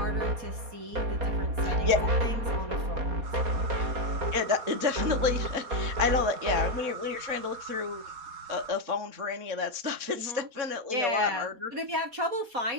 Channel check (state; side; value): late; left; 4.2 ms